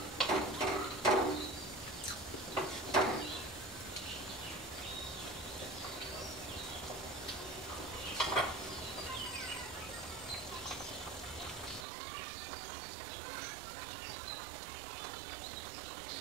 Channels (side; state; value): left; drops out; at 11.9 s